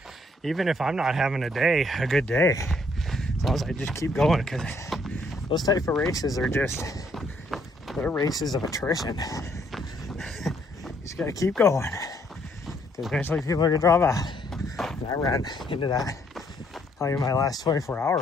Even if I'm not having a good day, as long as I just keep going, because those type of races are just, they're races of attrition. You just gotta keep going, because eventually people are gonna drop out. And I ran into that, probably my last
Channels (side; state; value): both; normal; correlation 0.68